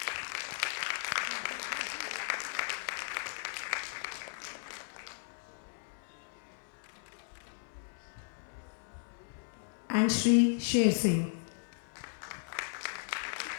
And Shri Sher Singh.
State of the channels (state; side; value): silent; right; 54 dB below the other